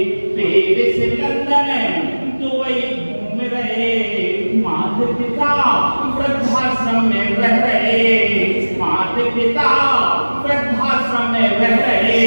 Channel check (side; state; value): both; inverted; correlation -1.00